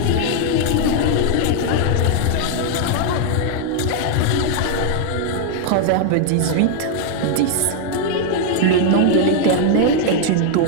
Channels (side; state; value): both; different; correlation 0.00